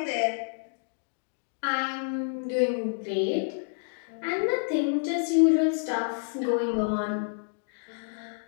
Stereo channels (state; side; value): silent; right; digital silence